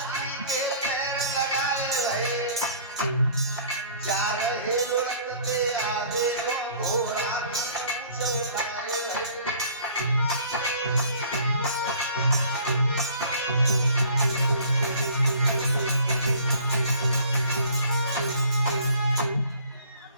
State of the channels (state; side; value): inverted; both; correlation -0.52